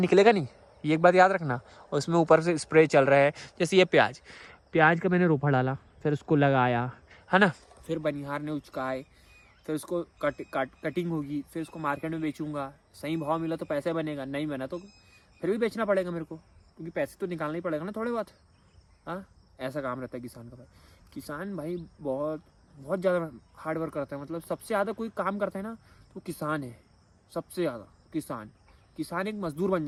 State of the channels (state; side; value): identical; both; correlation 1.00